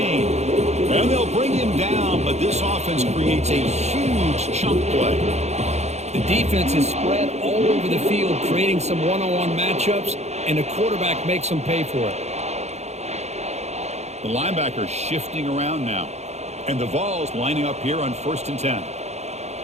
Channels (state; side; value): late; left; 0.32 ms